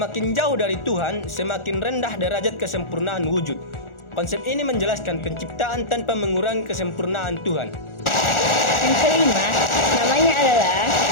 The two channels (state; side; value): late; right; 1.4 ms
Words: jauh dari Tuhan, semakin rendah derajat kesempurnaan wujud. Konsep ini menjelaskan penciptaan tanpa mengurangi kesempurnaan Tuhan. Yang kelima, namanya adalah